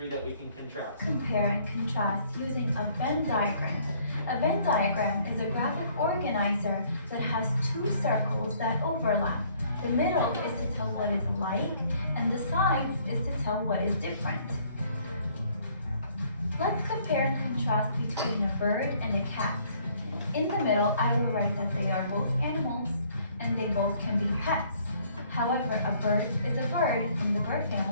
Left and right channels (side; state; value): both; inverted; correlation -0.62